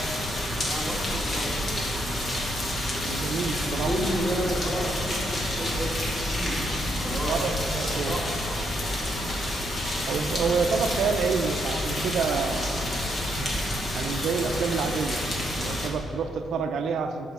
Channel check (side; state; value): both; normal; correlation 0.76